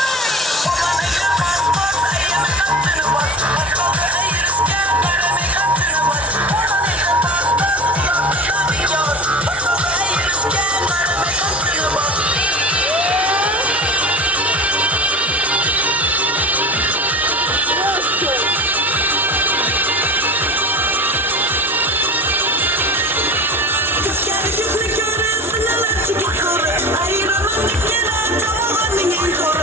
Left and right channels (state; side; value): normal; both; correlation 0.33